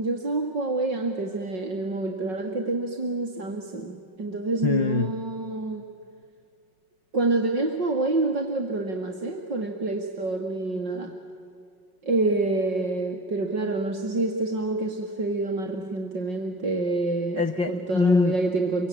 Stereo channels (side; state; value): left; late; 5.4 ms